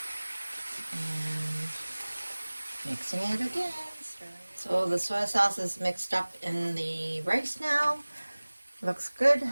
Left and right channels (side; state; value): both; inverted; correlation -1.00